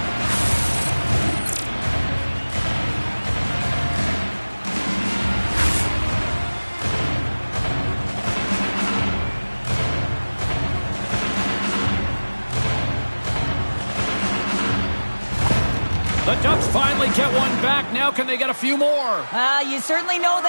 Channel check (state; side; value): inverted; both; correlation -1.00